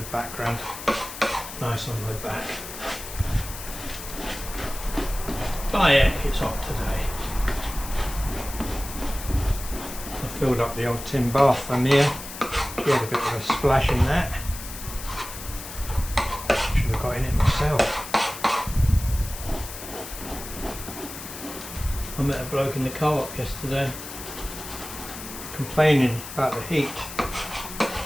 background, nice on my back. By heck, it's hot today. I filled up the old tin bath from here. She had a bit of a splash in that. Should have got in it myself. I met a bloke in the co-op yesterday complaining about the heat.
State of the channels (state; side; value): noise; left; hiss, 11 dB below the sound